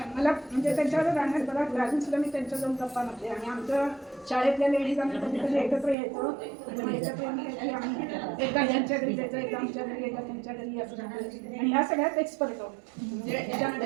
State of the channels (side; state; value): left; drops out; at 6.0 s